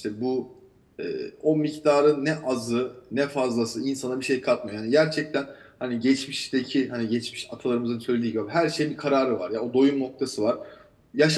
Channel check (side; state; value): both; identical; correlation 1.00